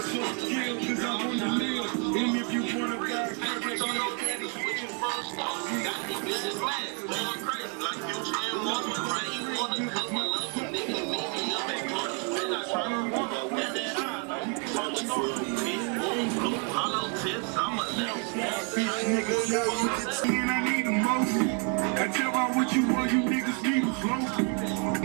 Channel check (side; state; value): left; quieter; 38.1 dB